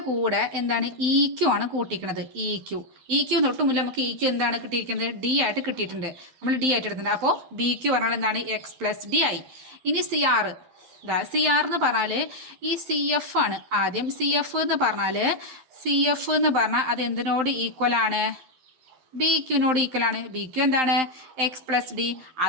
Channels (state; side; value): late; left; 12 ms